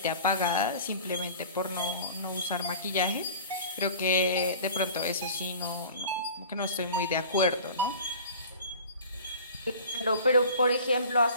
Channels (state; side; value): inverted; both; correlation -0.42